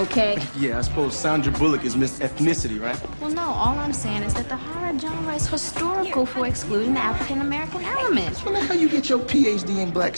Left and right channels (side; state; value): both; inverted; correlation -1.00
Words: Yeah, I suppose Sandra Bullock is Miss Ethnicity, right? Well, no, all I'm saying is that the horror genre is historical for excluding the African-American element. Well, that's how you get your PhD in black